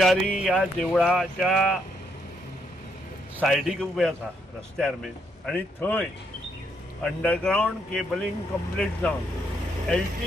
या देवळाच्या सायडीक उबे आसा रस्त्यार मेन आणि थंय अंडरग्राउंड केबलिंग कंप्लीट जावन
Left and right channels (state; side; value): normal; both; correlation 0.75